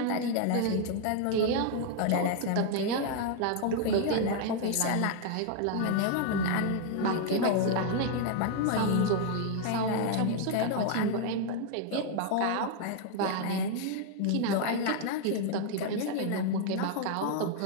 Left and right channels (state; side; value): different; both; correlation 0.00